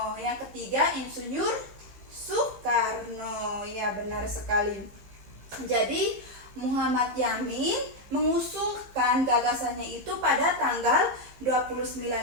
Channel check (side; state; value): left; late; 15 ms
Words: Yang ketiga Insinyur Soekarno. Ya, benar sekali. Jadi Muhammad Yamin mengusulkan gagasannya itu pada tanggal